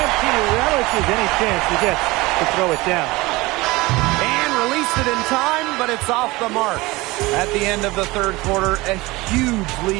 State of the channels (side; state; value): left; quieter; 21.6 dB